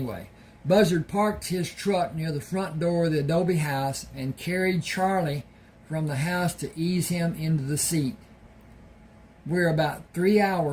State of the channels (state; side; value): identical; both; correlation 1.00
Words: Buzzard parked his truck near the front door of the adobe house and carried Charlie from the house to ease him into the seat. We're about 3